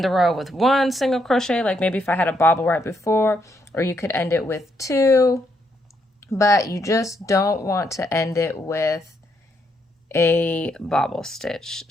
the row with 1 single crochet, like maybe if I had a bobble right before, or you could end it with 2, but you just don't want to end it with a bobble stitch.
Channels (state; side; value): normal; both; correlation 0.76